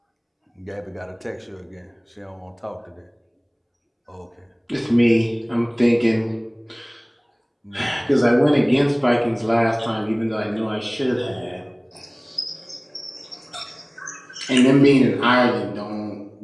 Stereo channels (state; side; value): identical; both; correlation 1.00